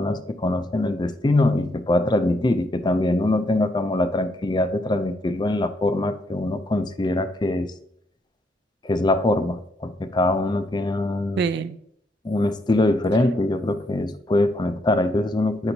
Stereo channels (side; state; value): both; normal; correlation 0.74